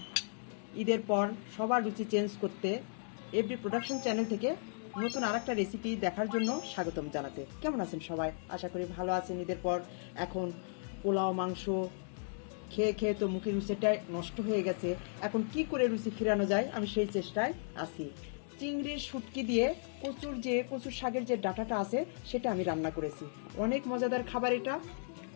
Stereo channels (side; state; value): right; silent; digital silence